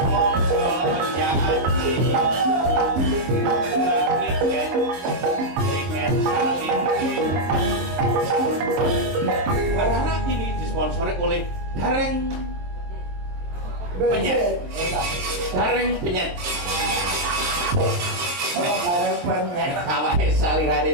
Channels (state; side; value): late; left; 23 ms